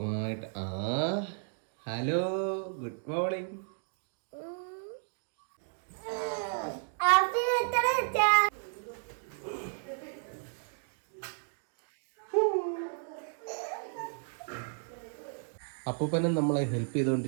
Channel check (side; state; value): left; silent; digital silence